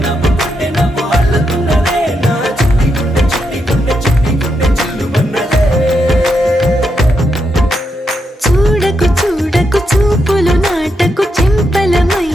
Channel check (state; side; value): normal; both; correlation 0.82